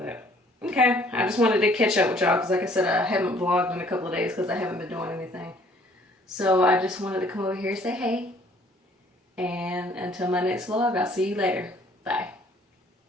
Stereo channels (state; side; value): normal; both; correlation 0.59